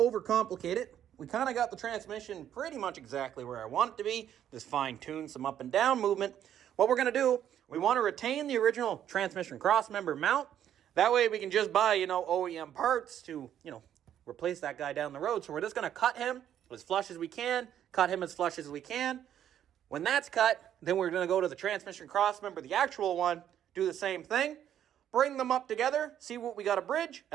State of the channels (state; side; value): quieter; left; 10.3 dB